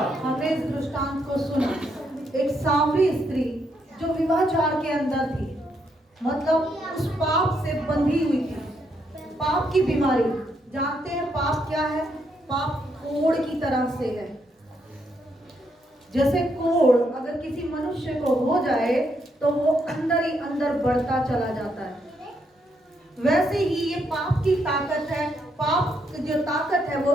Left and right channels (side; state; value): both; normal; correlation 0.77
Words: हमने इस दृष्टांत को सुना। एक सामरी स्त्री जो विवाहचार के अंदर थी, मतलब उस पाप से बंधी हुई थी, पाप की बीमारी। जानते हैं पाप क्या है? पाप कोढ़ की तरह से है। जैसे कोढ़ अगर किसी मनुष्य को हो जाए तो वो अंदर ही अंदर बढ़ता चला जाता है, वैसे ही ये पाप की ताकत है। पाप जो ताकत है वो